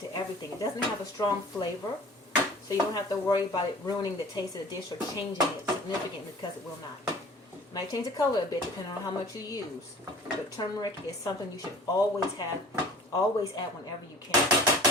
everything. It doesn't have a strong flavor, so you don't have to worry about it ruining the taste of the dish or changing it significantly, because it will not. It might change the color a bit depending on how much you use, but turmeric is something you should always have, always add whenever you can.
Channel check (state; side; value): normal; both; correlation 0.45